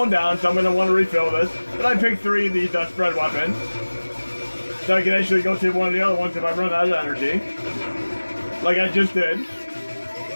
down, so I'm gonna want to refill this. But I picked 3 of these spread weapons, so I can actually go to one of the other ones if I run out of energy. Like I just did.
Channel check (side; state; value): both; inverted; correlation -1.00